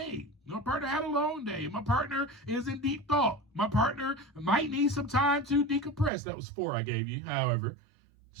My partner had a long day. My partner is in deep thought. My partner might need some time to decompress. That was 4 I gave you, however.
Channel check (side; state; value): left; drops out; at 6.1 s